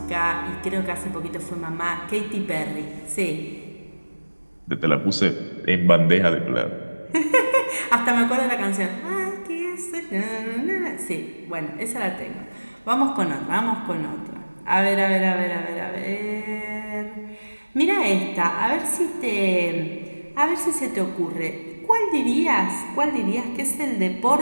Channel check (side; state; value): both; inverted; correlation -1.00